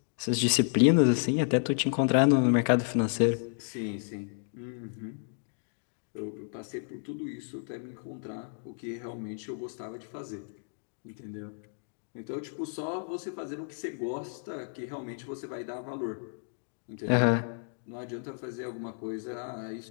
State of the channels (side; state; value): right; silent; digital silence